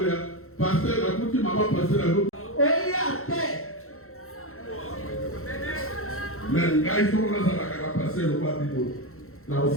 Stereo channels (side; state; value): right; late; 0.63 ms